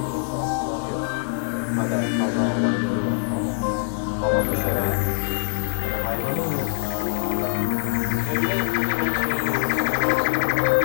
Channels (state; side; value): silent; right; 62 dB below the other